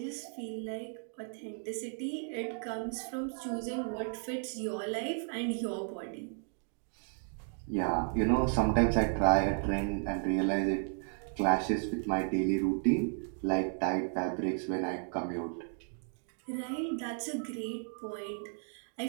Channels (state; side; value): silent; left; 55 dB below the other